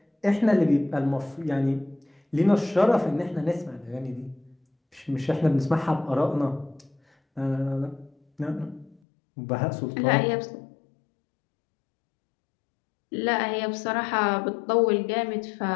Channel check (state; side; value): drops out; right; at 9.0 s